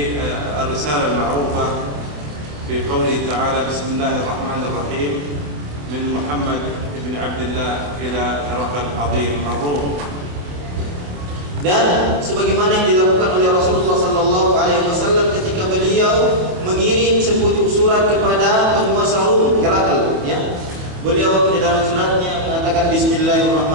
المعروفة في قوله تعالى بسم الله الرحمن الرحيم من محمد بن عبد الله إلى هرقل عظيم الروم. Dan sebagaimana yang dilakukan oleh Rasulullah sallallahu alaihi wasallam ketika beliau mengirim sepucuk surat kepada penguasa Rum, Herakl, Beliau di dalam suratnya mengatakan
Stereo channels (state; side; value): late; left; 27 ms